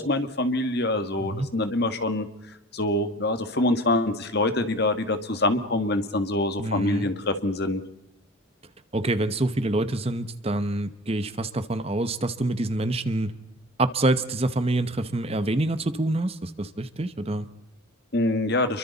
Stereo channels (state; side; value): normal; both; correlation 0.42